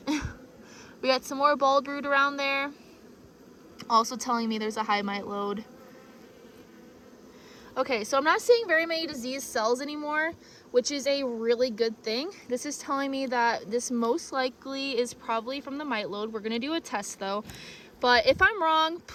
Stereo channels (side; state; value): both; identical; correlation 1.00